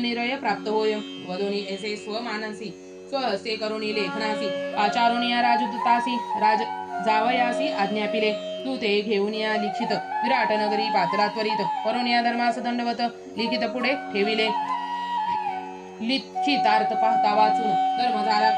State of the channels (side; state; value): both; identical; correlation 1.00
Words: निरय प्राप्त होय. वदोनी ऐसे स्वमानसी स्वहस्ते करुणी लेखनासी. आचारुणी राजदूतासी राज जावयासी आज्ञापिले. तू ते घेऊन या लिखित विराट नगरी पात्रा त्वरित. करून या धर्मास दंडवत लिखित पुढे ठेविले. लिखितार्थ पाहता वाचून धर्म झाला